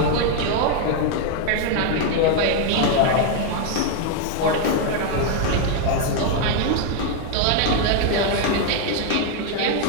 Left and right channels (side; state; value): both; different; correlation 0.01